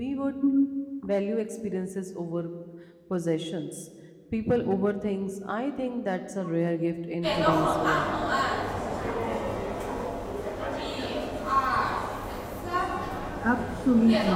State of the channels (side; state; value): both; identical; correlation 1.00